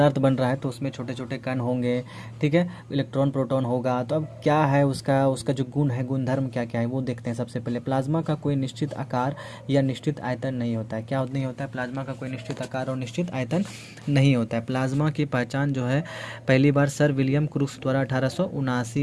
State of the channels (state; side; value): identical; both; correlation 1.00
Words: बन रहा है तो उसमें छोटे छोटे कण होंगे। ठीक है, इलेक्ट्रॉन प्रोटॉन होगा। तो अब क्या है उसका जो गुण है, गुणधर्म क्या क्या है वो देखते हैं। सबसे पहले प्लाज्मा का कोई निश्चित आकार या निश्चित आयतन नहीं होता है। क्या नहीं होता है? प्लाज्मा का कोई निश्चित आकार और निश्चित आयतन नहीं होता है। प्लाज्मा की पहचान जो है पहली बार सर विलियम क्रूक्स द्वारा